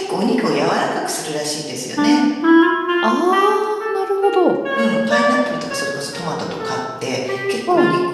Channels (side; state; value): both; identical; correlation 1.00